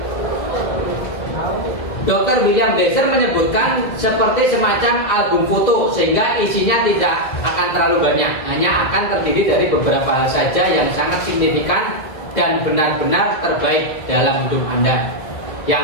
Dr. William Besser menyebutkan seperti semacam album foto, sehingga isinya tidak akan terlalu banyak, hanya akan terdiri dari beberapa hal saja yang sangat signifikan dan benar-benar terbaik dalam hidup Anda,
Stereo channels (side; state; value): right; late; 2.2 ms